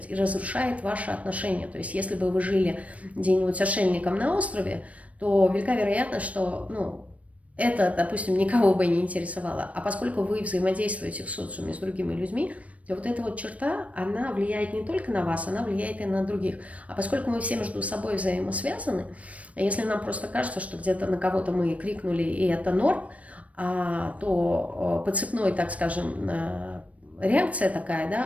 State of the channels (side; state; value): left; late; 0.066 ms